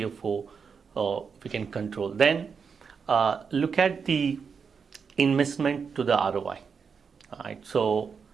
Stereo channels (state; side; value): quieter; left; 6.0 dB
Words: we can control. Then look at the investment to the ROI. Right? So